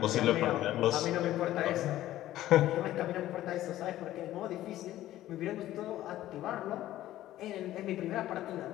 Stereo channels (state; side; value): quieter; right; 14.1 dB